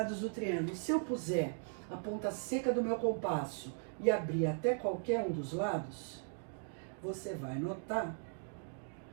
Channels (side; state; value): left; silent; digital silence